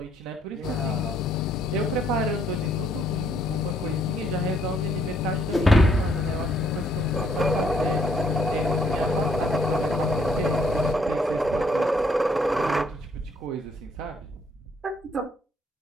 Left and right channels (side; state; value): both; normal; correlation 0.68